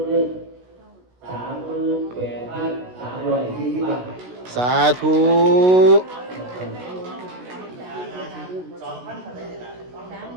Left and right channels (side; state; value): left; late; 16 ms